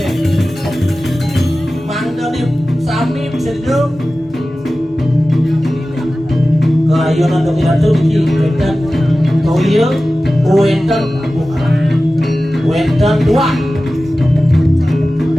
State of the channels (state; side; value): normal; both; correlation 0.95